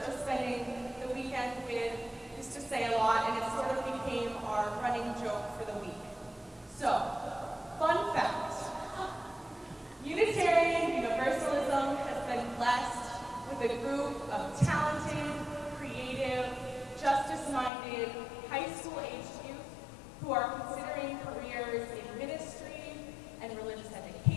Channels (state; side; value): drops out; right; at 17.7 s